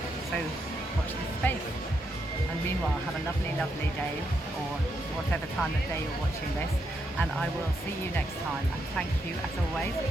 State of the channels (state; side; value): normal; both; correlation 0.80